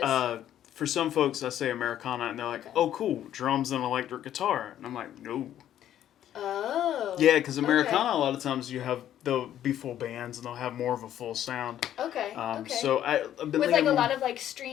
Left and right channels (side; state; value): right; quieter; 11.3 dB